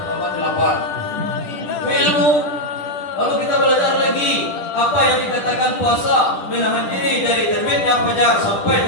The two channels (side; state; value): right; late; 10 ms